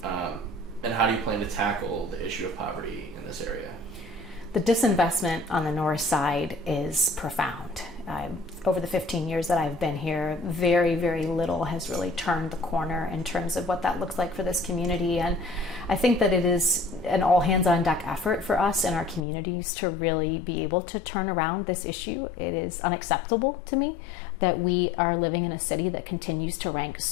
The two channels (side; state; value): right; drops out; at 19.2 s